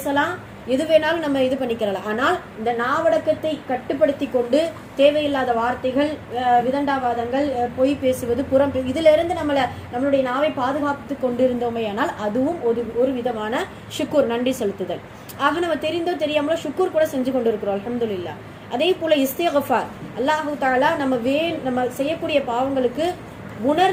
எது வேணாலும் நம்ம இது பண்ணிக்கிறலாம். ஆனால் இந்த நாவடக்கத்தை கட்டுப்படுத்தி கொண்டு தேவையில்லாத வார்த்தைகள், விதண்டாவாதங்கள், பொய் பேசுவது, புறம் இதுல இருந்து நம்மளுடைய நாவை பாதுகாத்து கொண்டு இருந்தோமே, ஆனால் அதுவும் ஒரு விதமான ஷுக்கூர், நன்றி செலுத்துதல். ஆக நம்ம தெரிந்தோ தெரியாமலோ ஷுக்கூர் கூட செஞ்சு கொண்டு இருக்கிறோம், அல்ஹம்துலில்லாஹ். அதே போல இஸ்திக்ஃபார், அல்லாஹு தஆலா நம்ம செய்யக்கூடிய பாவங்களுக்கு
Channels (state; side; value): identical; both; correlation 1.00